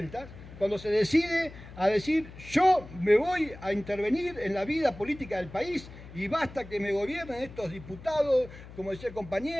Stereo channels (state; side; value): noise; left; hum, 16 dB below the sound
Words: cuando se decide a decir, yo me voy a intervenir en la vida política del país y basta que me gobiernen estos diputados, como decía el